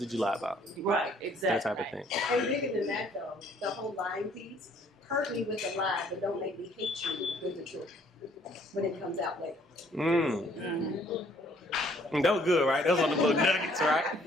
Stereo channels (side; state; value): both; normal; correlation 0.62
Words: you lie about? Right, exactly. That type of thing. And bigger than that, though, the whole lying piece, hurt me with the lie, but don't make me hate you with the truth when it comes out later. That was good, right? That was on the little nuggets,